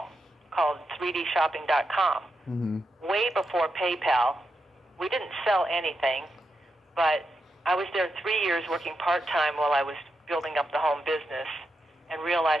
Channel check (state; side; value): normal; both; correlation 0.85